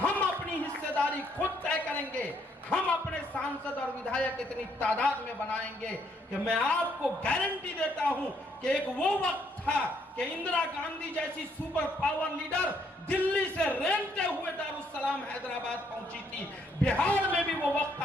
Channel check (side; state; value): both; normal; correlation 0.70